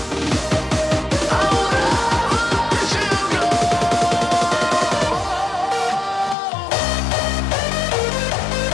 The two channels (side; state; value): right; drops out; at 6.4 s